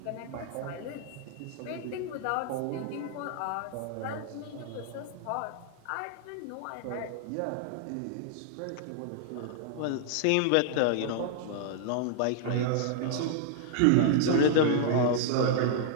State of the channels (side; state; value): both; different; correlation 0.00